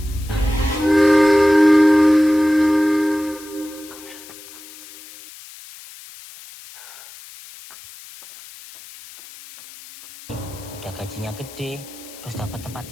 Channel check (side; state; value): left; noise; hiss, 18 dB below the sound